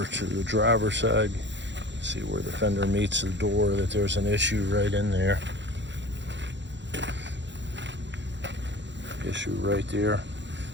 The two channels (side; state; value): left; late; 0.52 ms